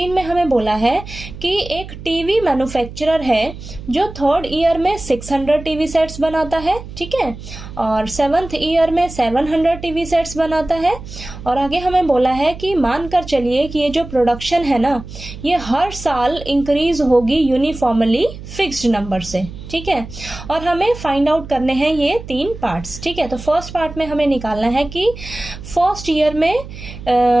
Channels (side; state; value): right; noise; hum, 13 dB below the sound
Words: में हमें बोला है कि एक TV manufacturer है जो third year में 600 टीवी सेट्स बनाता है, ठीक है, और सेवंथ ईयर में 700 टीवी सेट्स बनाता है। और आगे हमें बोला है कि मानकर चलिए कि ये जो प्रोडक्शन है ना, ये हर साल इंक्रीज होगी यूनिफॉर्मली फिक्स्ड नंबर से, ठीक है। और हमें फाइंड आउट करने हैं ये 3 पार्ट्स, ठीक है। तो फर्स्ट पार्ट में हमें निकालना है कि फर्स्ट ईयर में